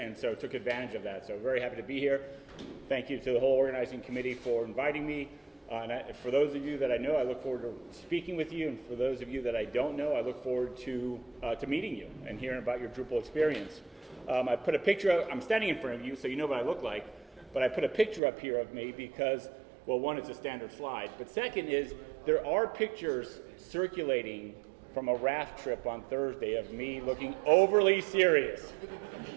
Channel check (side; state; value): left; drops out; at 18.2 s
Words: so took advantage of that. So very happy to be here. Thank you to the whole organizing committee for inviting me. For those of you that I know, I look forward to speaking with you, and for those of you that I don't know, I look forward to meeting you and hearing about your Drupal experience. I put a picture up, I'm standing in front of you, so you know what I look like, but I put a picture up here of me because, well, one, it's a standard slide, but second is there are pictures circulating from a raft trip on Thursday of me looking overly serious